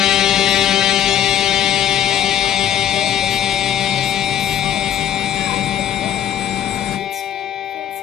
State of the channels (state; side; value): quieter; right; 10.5 dB